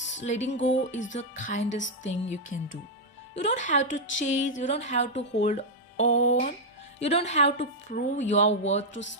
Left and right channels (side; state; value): both; normal; correlation -0.03